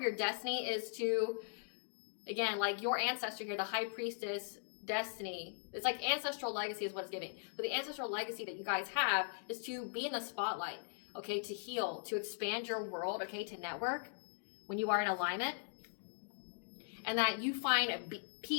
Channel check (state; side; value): silent; right; digital silence